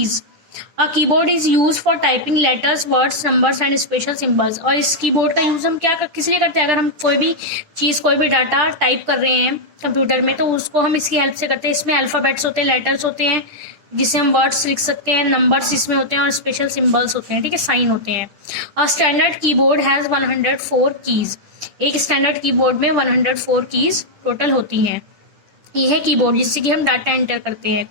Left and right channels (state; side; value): late; left; 10 ms